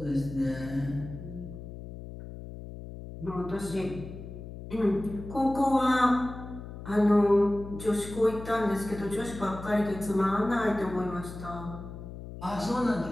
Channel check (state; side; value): noise; left; hum, 11 dB below the sound